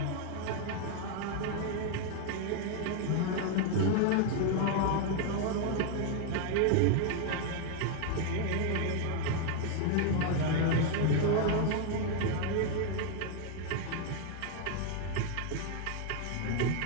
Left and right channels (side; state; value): both; different; correlation 0.00